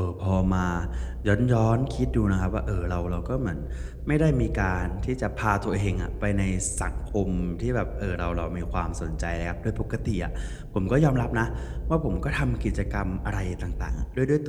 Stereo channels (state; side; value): identical; both; correlation 1.00